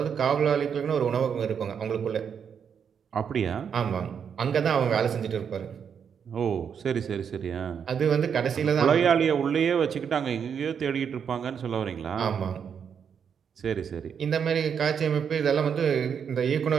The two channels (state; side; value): quieter; left; 7.3 dB